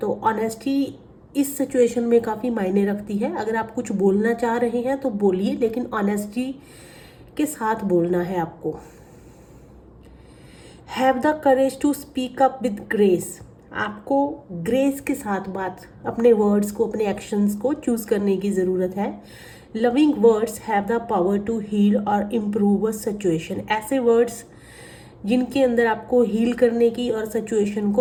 ऑनेस्टी इस सिचुएशन में काफ़ी मायने रखती है। अगर आप कुछ बोलना चाह रहे हैं तो बोलिए, लेकिन ऑनेस्टी के साथ बोलना है आपको। Have the courage to speak up with grace. आपको ग्रेस के साथ बात, अपने वर्ड्स को, अपने एक्शंस को चूज़ करने की ज़रूरत है। Loving words have the power to heal और इम्प्रूव अ सिचुएशन। ऐसे वर्ड्स जिनके अंदर आपको हील करने की और सिचुएशन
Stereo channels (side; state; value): both; identical; correlation 1.00